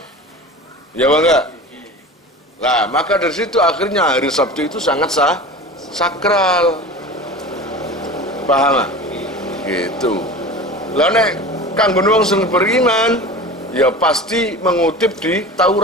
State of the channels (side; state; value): both; normal; correlation 0.34